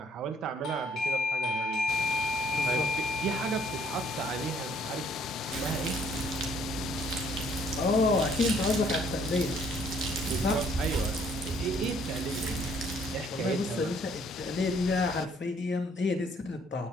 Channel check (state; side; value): normal; both; correlation 0.63